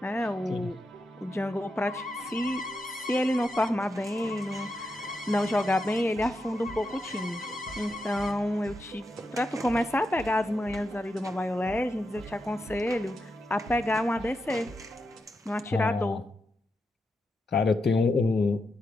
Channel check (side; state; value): both; normal; correlation 0.86